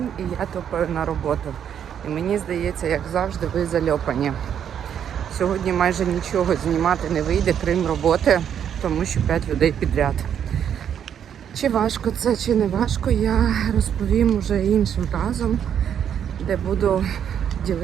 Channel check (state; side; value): quieter; left; 8.8 dB